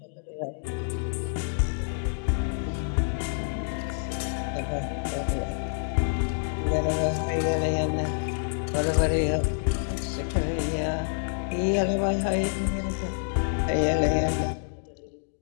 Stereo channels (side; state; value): right; silent; digital silence